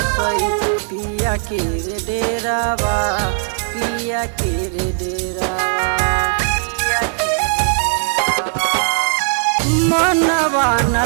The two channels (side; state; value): left; silent; digital silence